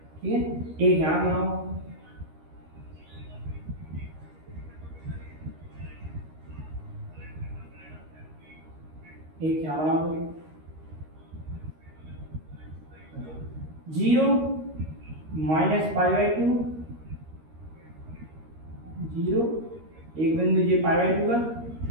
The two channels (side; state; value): left; late; 13 ms